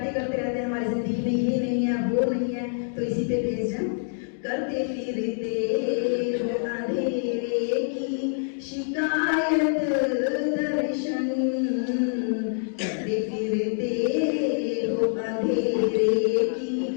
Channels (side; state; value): right; silent; digital silence